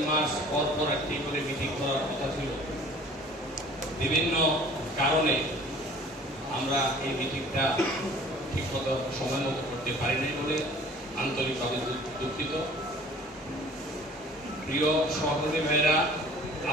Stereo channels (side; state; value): both; normal; correlation 0.49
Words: মাস পর পর একটি করে মিটিং করার কথা ছিল, বিভিন্ন কারণে আমরা এই মিটিংটা ঠিকমতো সময় মতো করতে পারি নাই বলে আন্তরিকভাবে দুঃখিত। প্রিয় সহকর্মী ভাইরা,